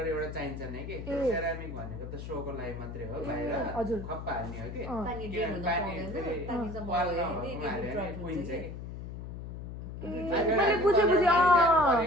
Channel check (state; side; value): noise; left; hum, 9 dB below the sound